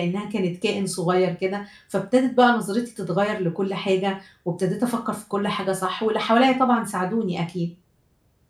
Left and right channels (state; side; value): identical; both; correlation 1.00